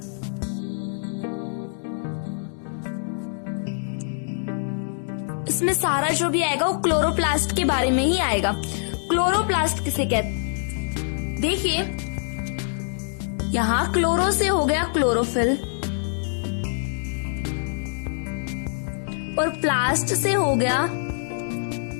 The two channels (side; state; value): right; silent; digital silence